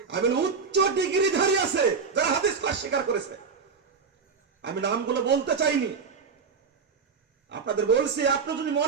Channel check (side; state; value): left; quieter; 5.6 dB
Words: আমি উচ্চ ডিগ্রিধারী আছে যারা হাদিসকে অস্বীকার করেছে। আমি নামগুলো বলতে চাইনি, আপনাদের বলছি, আপনি যদি